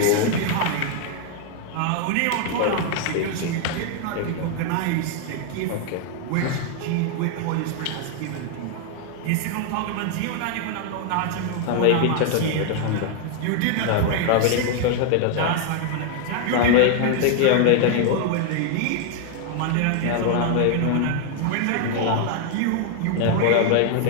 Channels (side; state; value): both; different; correlation 0.00